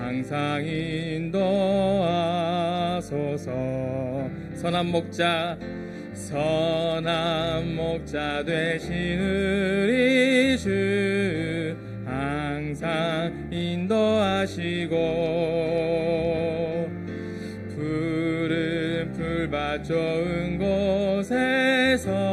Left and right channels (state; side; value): identical; both; correlation 1.00